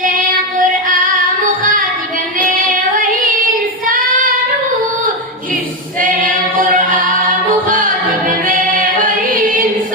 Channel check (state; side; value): normal; both; correlation 0.09